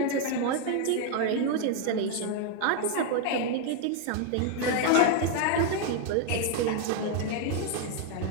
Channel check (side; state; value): both; different; correlation 0.01